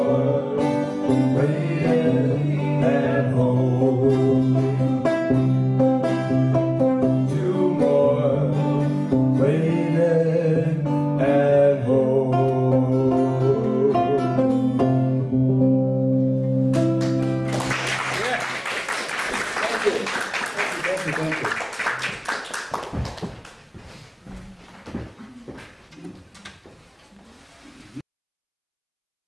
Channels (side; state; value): both; identical; correlation 1.00